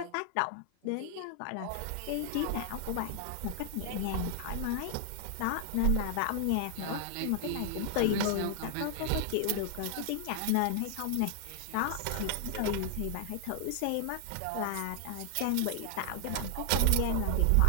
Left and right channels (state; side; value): different; both; correlation 0.00